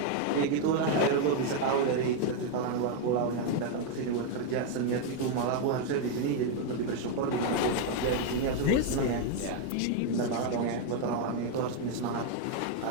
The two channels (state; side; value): different; both; correlation 0.01